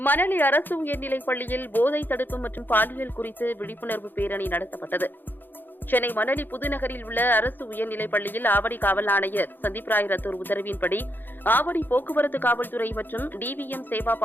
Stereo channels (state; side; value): late; right; 0.092 ms